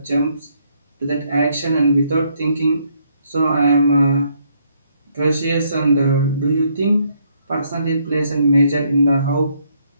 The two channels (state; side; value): inverted; both; correlation -0.71